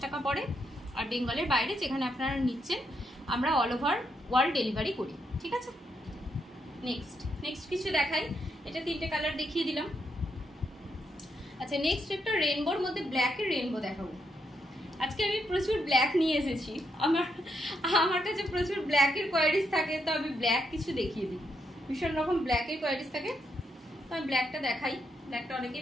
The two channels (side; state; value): both; normal; correlation 0.79